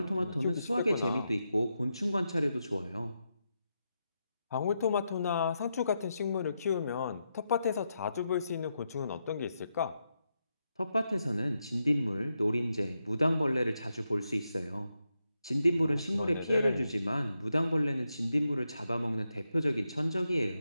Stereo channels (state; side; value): inverted; both; correlation -0.85